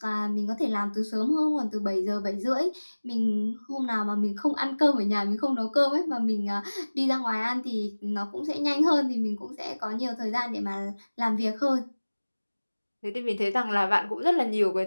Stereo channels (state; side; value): inverted; both; correlation -1.00